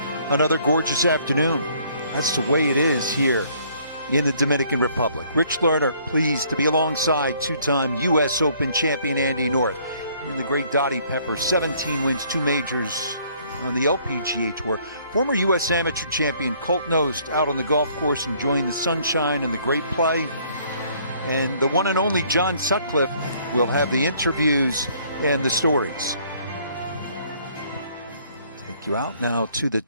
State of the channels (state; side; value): inverted; both; correlation -0.62